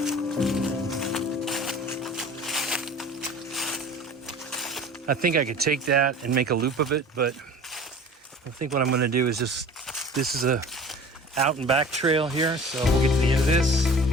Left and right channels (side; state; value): both; normal; correlation 0.42